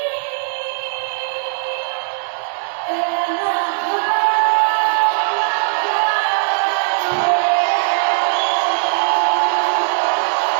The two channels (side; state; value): left; silent; 67 dB below the other